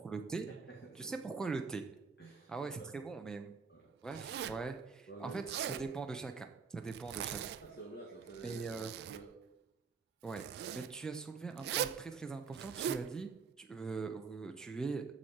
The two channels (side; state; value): left; quieter; 5.3 dB